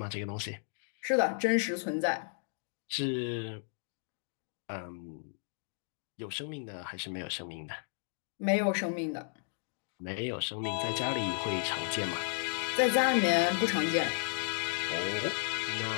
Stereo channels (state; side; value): silent; right; digital silence